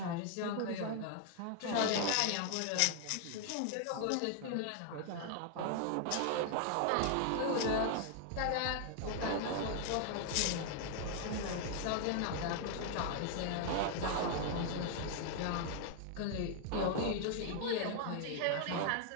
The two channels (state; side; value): different; both; correlation 0.00